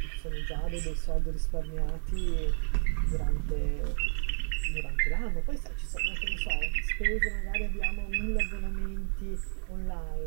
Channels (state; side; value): silent; left; digital silence